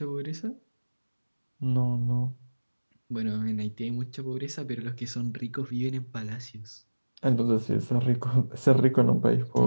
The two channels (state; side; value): inverted; both; correlation -1.00